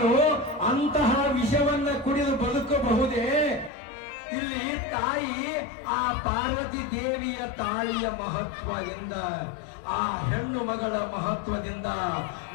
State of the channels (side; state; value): right; drops out; at 3.7 s